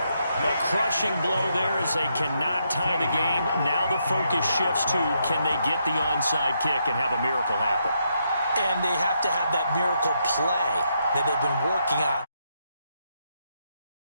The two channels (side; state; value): both; inverted; correlation -0.79